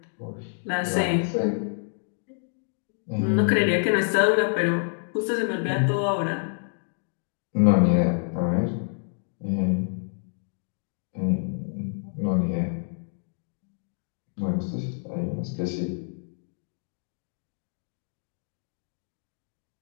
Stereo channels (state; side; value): silent; right; digital silence